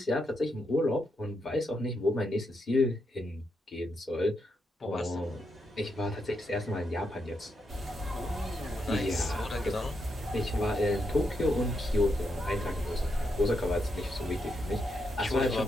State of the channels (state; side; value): normal; both; correlation 0.82